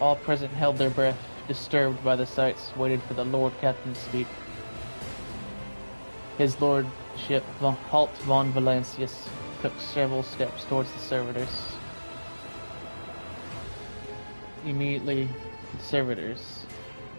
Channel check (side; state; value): both; inverted; correlation -1.00